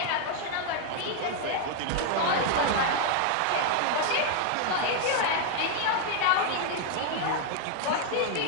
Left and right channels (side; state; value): both; different; correlation 0.00